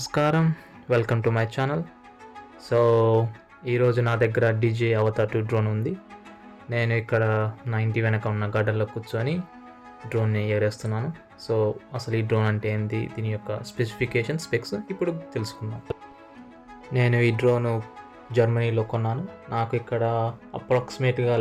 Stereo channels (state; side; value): identical; both; correlation 1.00